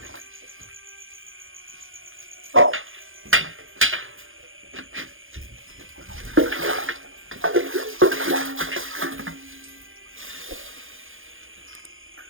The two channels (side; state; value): left; late; 0.59 ms